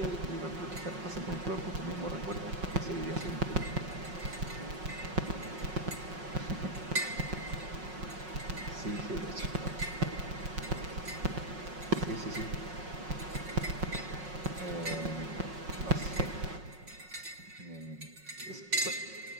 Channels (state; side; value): late; left; 5.5 ms